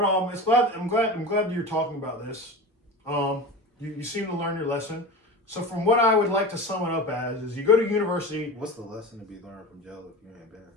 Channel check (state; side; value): normal; both; correlation 0.29